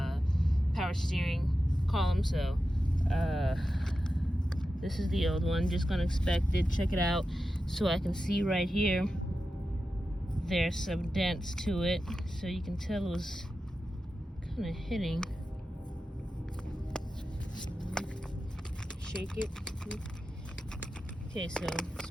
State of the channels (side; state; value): both; normal; correlation 0.91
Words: power steering column. So this is the old one. Just gonna inspect it, check it out, so I can see right here. There's some dents to it, so you can tell it was kind of hitting. Shake it. Okay, so it's